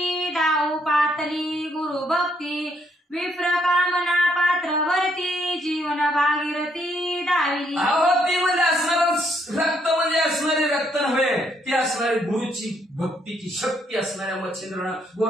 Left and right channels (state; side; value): normal; both; correlation 0.72